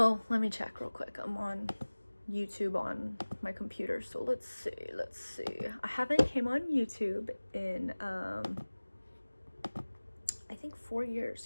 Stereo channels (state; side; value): inverted; both; correlation -1.00